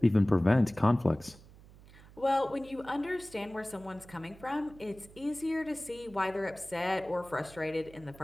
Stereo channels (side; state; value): right; noise; hum, 22 dB below the sound